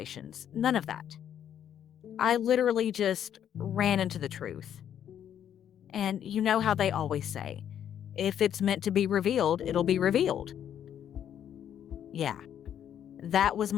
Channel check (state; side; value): quieter; right; 9.7 dB